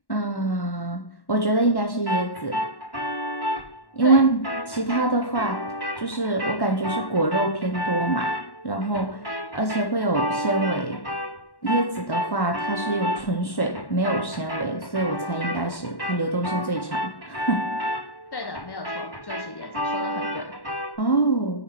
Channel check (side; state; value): right; late; 1.1 ms